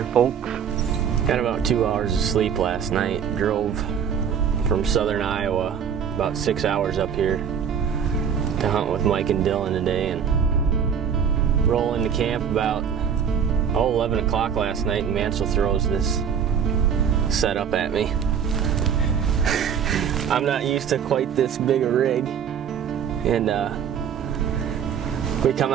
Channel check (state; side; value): quieter; left; 7.7 dB